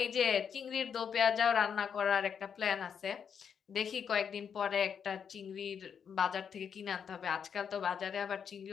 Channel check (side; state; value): right; quieter; 7.3 dB